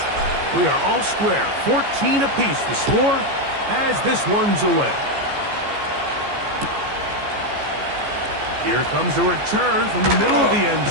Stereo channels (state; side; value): late; left; 14 ms